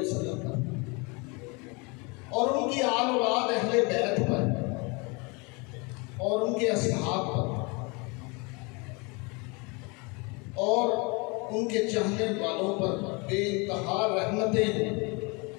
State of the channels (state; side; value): quieter; right; 29.3 dB